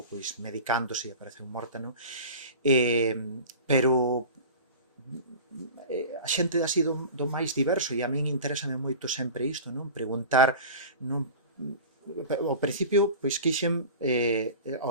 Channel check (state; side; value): inverted; both; correlation -0.35